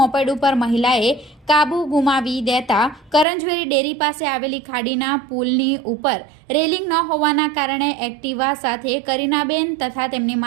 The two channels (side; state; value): left; drops out; at 3.2 s